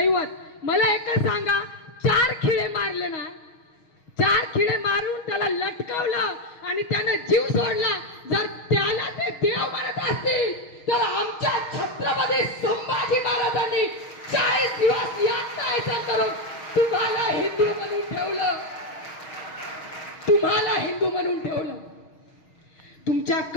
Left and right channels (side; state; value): right; late; 6.3 ms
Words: मला एकच सांगा, 4 खिळे मारले ना, 4 खिळे मारून त्याला लटकवलं आणि त्यानं जीव सोडला. जर त्याला ते देव मानत असतील तर आमच्या छत्रपती संभाजी महाराजांनी 40 दिवस यातना करून तुम्हाला हिंदू म्हणून ठेवलं. तुम्हाला हिंदू म्हणून ठेवलं. तुमच्या